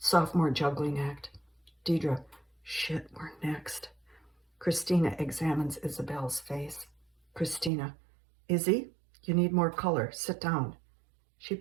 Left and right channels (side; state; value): left; drops out; at 7.7 s